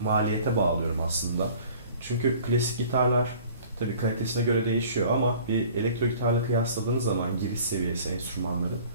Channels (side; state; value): both; inverted; correlation -0.48